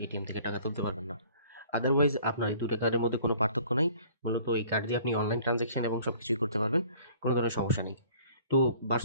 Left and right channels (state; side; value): inverted; both; correlation -0.53